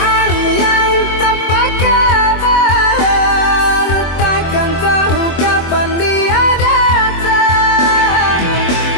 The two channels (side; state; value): right; late; 24 ms